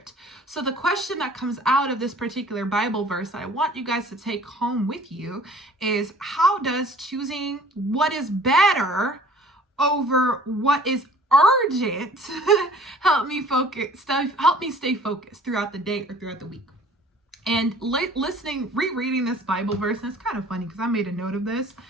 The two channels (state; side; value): normal; both; correlation 0.51